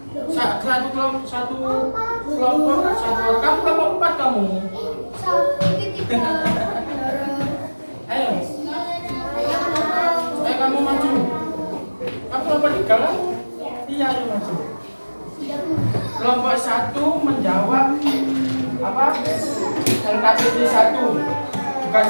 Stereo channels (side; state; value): both; inverted; correlation -1.00